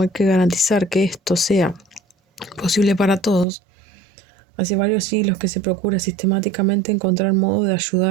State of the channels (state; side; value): drops out; left; at 3.5 s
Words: hay que garantizar que esto sea posible para todos. Hace varios siglos que se procura sistemáticamente encontrar modos de